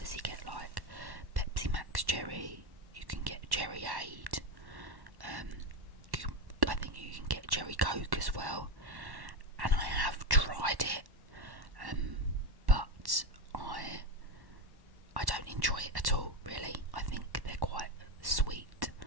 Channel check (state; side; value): late; left; 1.1 ms